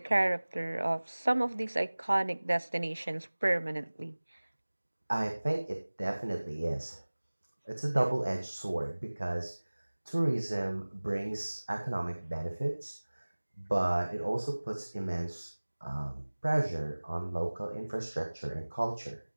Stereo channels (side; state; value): both; inverted; correlation -1.00